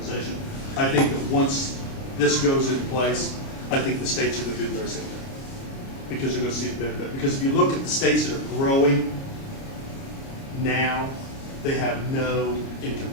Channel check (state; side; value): late; right; 29 ms